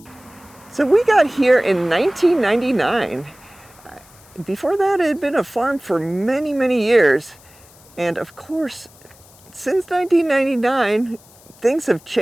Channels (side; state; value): left; noise; hiss, 26 dB below the sound